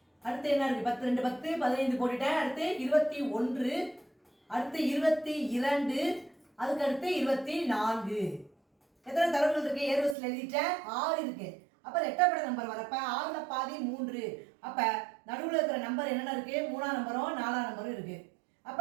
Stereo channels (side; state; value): left; drops out; at 10.2 s